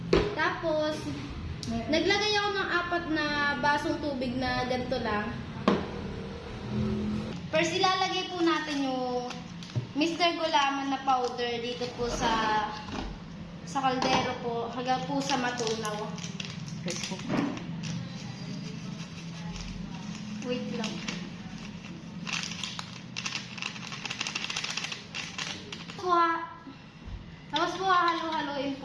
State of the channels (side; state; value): both; identical; correlation 1.00